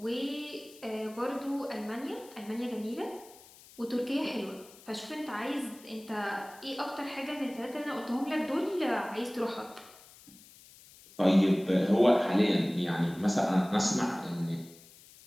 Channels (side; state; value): left; noise; hiss, 22 dB below the sound